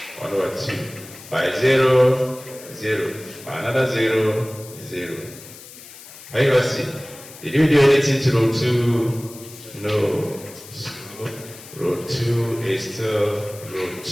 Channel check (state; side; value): noise; left; hiss, 17 dB below the sound